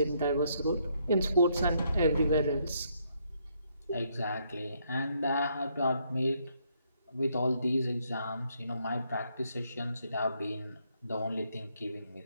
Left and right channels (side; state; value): both; inverted; correlation -0.72